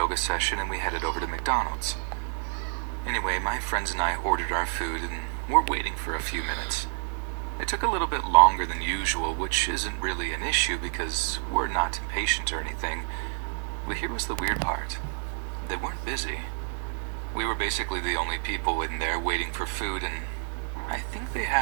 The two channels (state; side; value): silent; left; 59 dB below the other